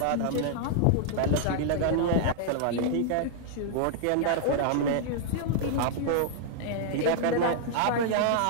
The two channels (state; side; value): different; both; correlation -0.01